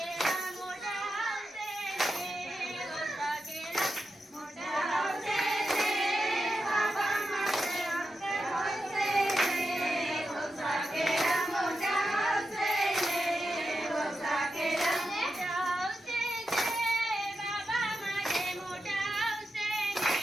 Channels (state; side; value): normal; both; correlation 0.89